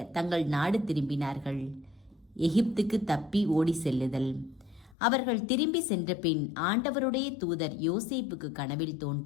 தங்கள் நாடு திரும்பினார்கள். எகிப்துக்கு தப்பி ஓடி செல்லுதல். அவர்கள் திரும்பி சென்ற பின் ஆண்டவருடைய தூதர் யோசேப்புக்கு கனவில்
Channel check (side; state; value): right; drops out; at 5.0 s